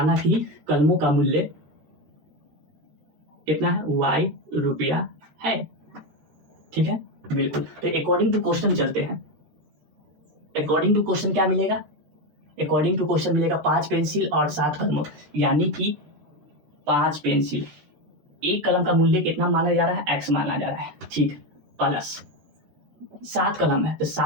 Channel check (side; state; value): left; late; 13 ms